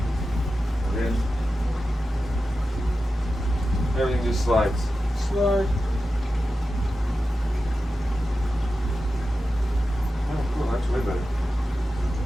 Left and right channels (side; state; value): both; normal; correlation 0.92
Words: And then everything just slides. Slide. Oh, cool. That's way better.